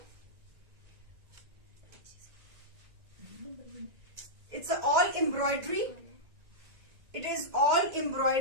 It's all embroidery, it is all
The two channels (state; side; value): late; left; 1.9 ms